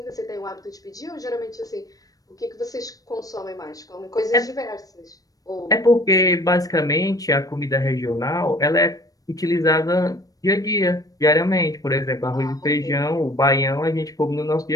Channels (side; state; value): right; late; 0.18 ms